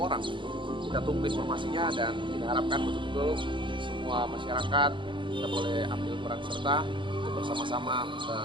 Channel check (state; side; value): late; left; 0.24 ms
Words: Kita tunggu informasinya dan kita harapkan betul-betul semua masyarakat kita boleh ambil peran serta untuk bersama-sama